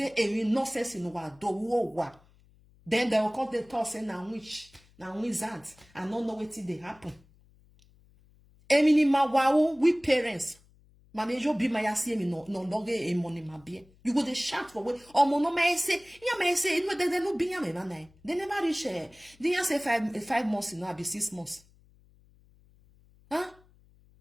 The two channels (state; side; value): noise; left; hum, 29 dB below the sound